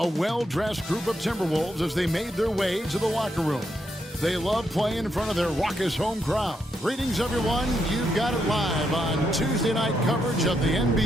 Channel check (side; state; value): both; normal; correlation 0.80